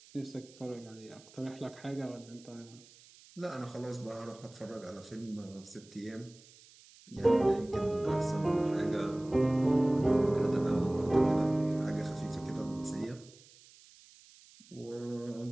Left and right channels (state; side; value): noise; right; hiss, 24 dB below the sound